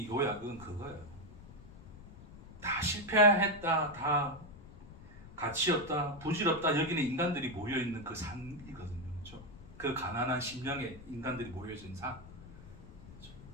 요약은 그거예요. 다 실패했다, 다 가치 없다, 부질없다 여기는 인간들이 모여 있는 그 산이거든요. 그렇죠? 그 가난한 심령의 인간들이 모여 있는 산. 그렇죠?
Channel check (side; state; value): left; noise; rumble, 17 dB below the sound